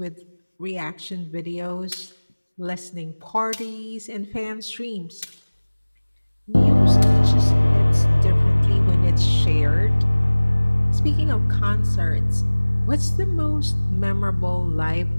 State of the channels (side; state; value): both; inverted; correlation -1.00